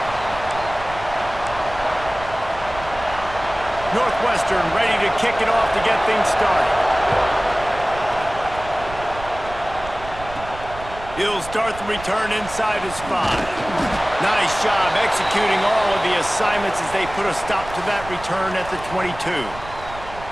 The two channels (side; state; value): right; noise; rumble, 14 dB below the sound